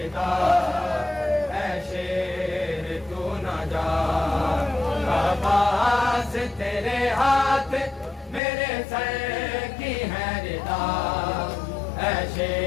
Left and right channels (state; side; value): drops out; right; at 8.4 s